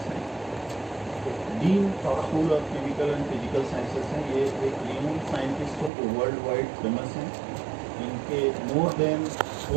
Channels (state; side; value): drops out; left; at 5.9 s